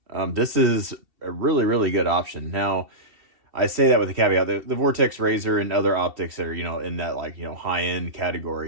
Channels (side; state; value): left; late; 2.7 ms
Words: this is a really, really good option. Now, I say that with a caveat. The Vortex Razor and other optics that are, in that, high-end